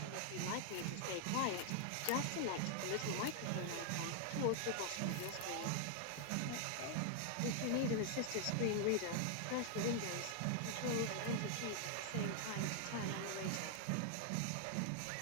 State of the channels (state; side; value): different; both; correlation 0.00